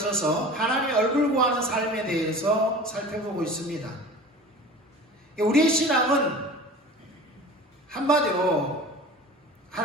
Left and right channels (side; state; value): both; normal; correlation 0.38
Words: 하나님의 얼굴 구하는 삶에 대해서 살펴보고 있습니다. 우리의 신앙은 한마디로